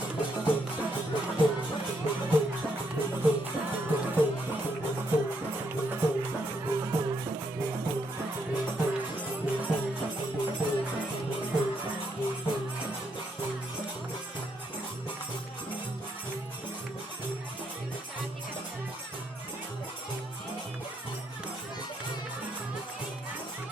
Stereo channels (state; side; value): normal; both; correlation 0.76